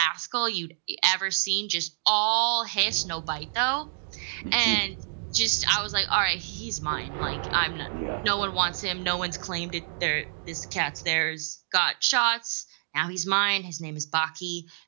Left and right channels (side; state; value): left; silent; digital silence